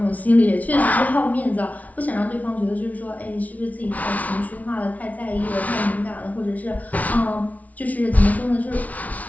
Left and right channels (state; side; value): late; right; 0.071 ms